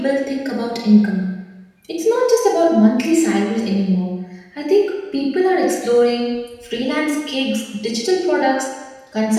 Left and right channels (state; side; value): identical; both; correlation 1.00